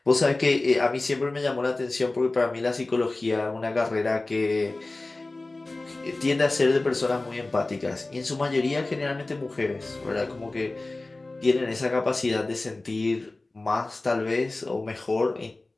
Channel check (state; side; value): quieter; right; 3.1 dB